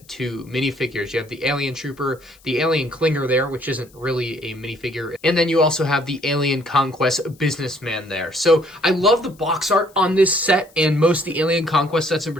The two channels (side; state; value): left; noise; hiss, 28 dB below the sound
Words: 2 minifigures. You have the Alien Trooper, the Alien Clinger there, which isn't really a minifigure, and then you also have the Alien Conquest businessman there. So I love the box art on this set, and most of the Alien Conquest sets in